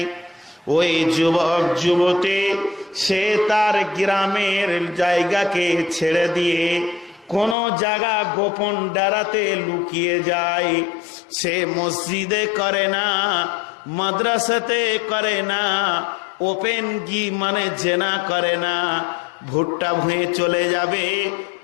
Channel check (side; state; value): right; drops out; at 7.6 s